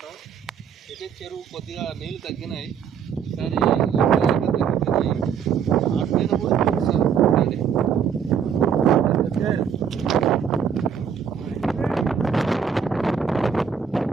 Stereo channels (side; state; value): left; quieter; 7.3 dB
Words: అయితే చెరువు కొద్దిగా నీళ్ళు తగ్గినాయి, ఈసారి తగ్గిపోయినాయి. ఆ పైన కూడా చూపిస్తాను.